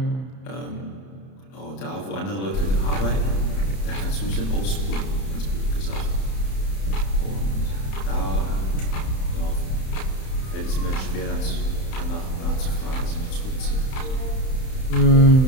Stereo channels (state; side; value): late; right; 31 ms